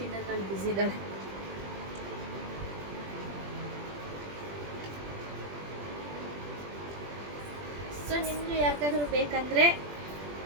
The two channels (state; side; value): late; left; 20 ms